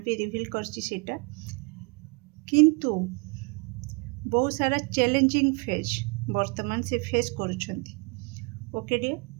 भी रिवील करछि सेटा किंतु बहुत सारा चैलेंजिंग फेज वर्तमान से फेस करूछंती। ओके डियर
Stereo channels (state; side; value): quieter; left; 32.1 dB